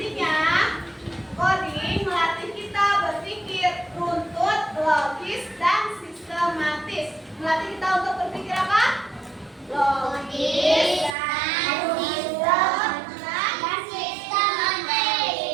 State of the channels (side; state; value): left; drops out; at 11.2 s